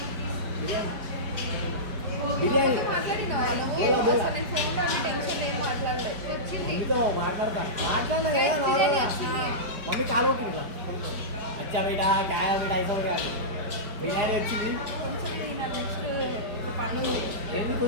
బిర్యానీ బిర్యానీ బోలా బోలా. మమ్మీతో మాట్లాడినా కదా నార్మల్గా. మమ్మీ కాలు ఓకే అచ్చా బేటా కాయ బేటా ఐసా కాదు. బిర్యానీ వచ్చింది. ఏంది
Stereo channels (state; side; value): late; left; 4.6 ms